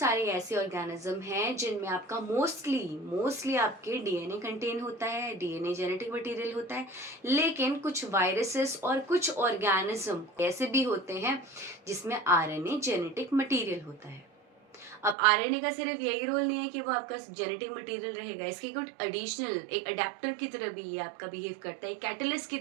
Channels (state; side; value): drops out; left; at 15.2 s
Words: ऐसे ऑर्गेनिज्म हैं जिनमें आपका मोस्टली आपके डीएनए कंटेन होता है, डीएनए जेनेटिक मटेरियल होता है। लेकिन कुछ वायरसेस और कुछ ऑर्गेनिज्म ऐसे भी होते हैं जिसमें आरएनए जेनेटिक मटेरियल होता है। अब आरएनए का सिर्फ यही रोल नहीं है कि वो आपका जेनेटिक मटेरियल रहेगा, इसकी कुछ एडिशनल एक अडेप्टर की तरह भी ये आपका बिहेव करता है, कैटलिस्ट की